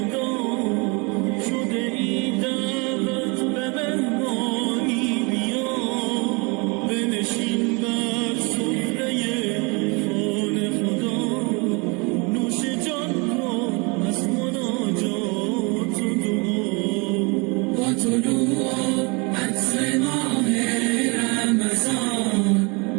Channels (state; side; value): quieter; left; 29.7 dB